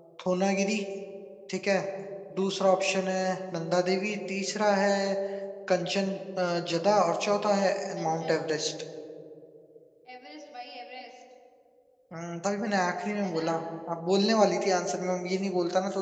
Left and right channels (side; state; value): both; identical; correlation 1.00